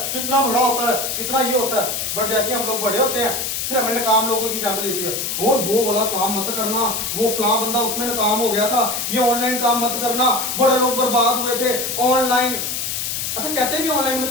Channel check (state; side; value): noise; left; hiss, 2 dB below the sound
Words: कितना बड़ा होता है, कितना ये होता है। बट जैसे हम लोग बड़े होते हैं, फिर हमें नाकाम लोगों की एग्जांपल देती है, वो वाला काम मत करना, वो फला बंदा उसमें नाकाम हो गया था, ये ऑनलाइन काम मत करना, बड़े लोग बर्बाद हुए थे ऑनलाइन। अच्छा कहते भी ऑनलाइन में